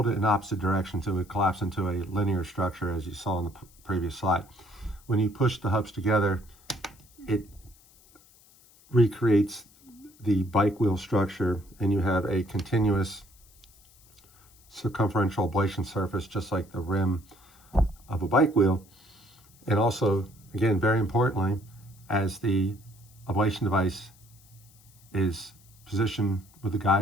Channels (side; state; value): left; noise; hiss, 27 dB below the sound